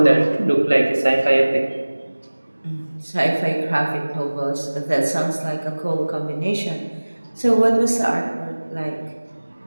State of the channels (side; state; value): both; inverted; correlation -1.00